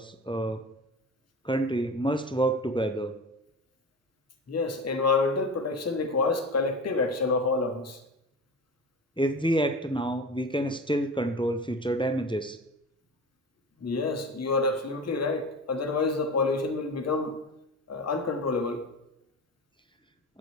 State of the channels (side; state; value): both; normal; correlation 0.31